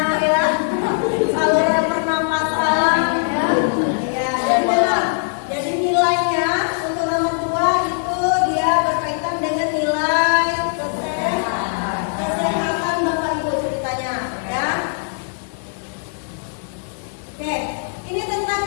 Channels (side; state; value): right; silent; digital silence